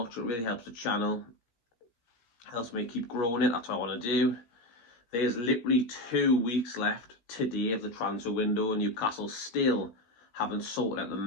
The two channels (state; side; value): late; right; 17 ms